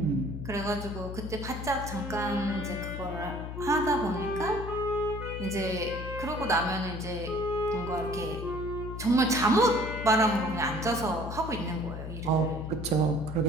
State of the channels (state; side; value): noise; left; hum, 7 dB below the sound